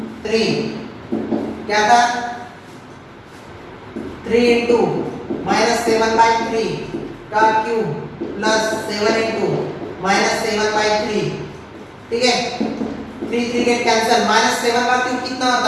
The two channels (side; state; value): both; identical; correlation 1.00